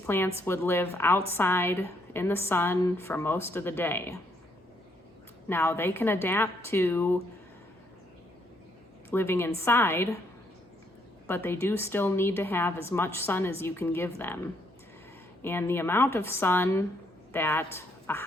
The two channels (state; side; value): normal; both; correlation 0.72